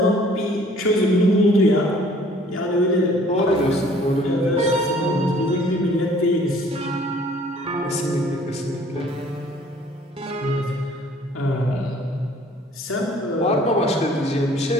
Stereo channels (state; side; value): normal; both; correlation 0.55